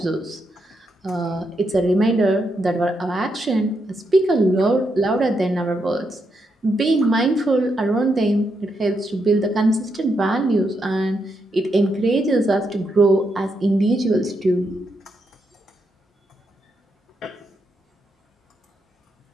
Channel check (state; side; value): normal; both; correlation 0.81